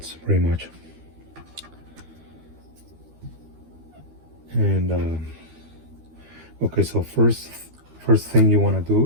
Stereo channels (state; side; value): late; left; 13 ms